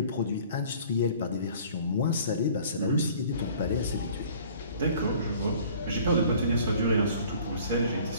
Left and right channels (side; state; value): both; inverted; correlation -0.51